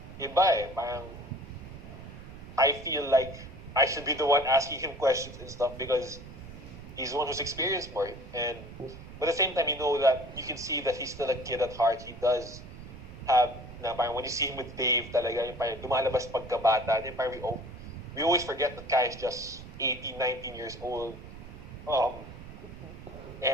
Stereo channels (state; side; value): noise; right; rumble, 14 dB below the sound